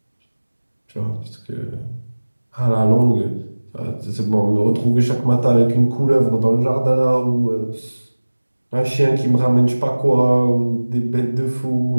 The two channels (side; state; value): both; inverted; correlation -1.00